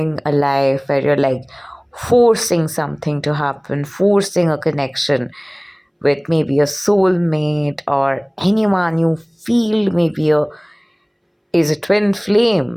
a life where you're like forcing something to happen, forcing a connection with maybe a soulmate or anyone you feel maybe is a twin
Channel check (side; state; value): both; identical; correlation 1.00